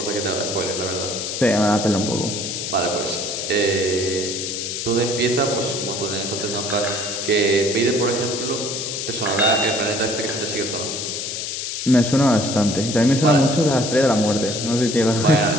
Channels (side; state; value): left; noise; hiss, 4 dB below the sound